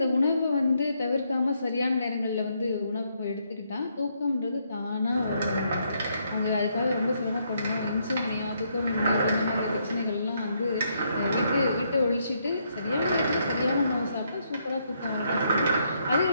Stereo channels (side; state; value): both; inverted; correlation -0.74